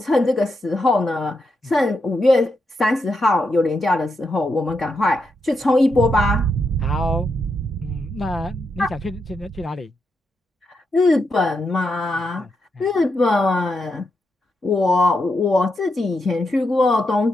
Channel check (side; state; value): both; normal; correlation 0.83